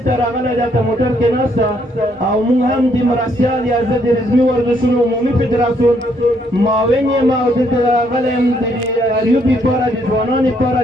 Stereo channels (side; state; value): both; normal; correlation 0.71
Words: ته راغلی دا په موټر کې ناسته او موږ هم د مرستیال یا زه د رزمي ورزشونو عمومي فدراسیون معاون یم او دلته راغلی یم د اریوب لپاره د ځوانانو لپاره